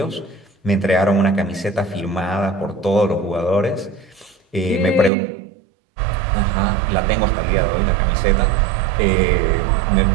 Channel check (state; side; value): drops out; left; at 5.1 s